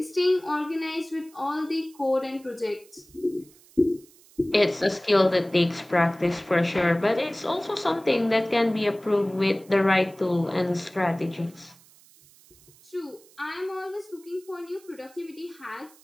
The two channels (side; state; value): right; noise; hiss, 26 dB below the sound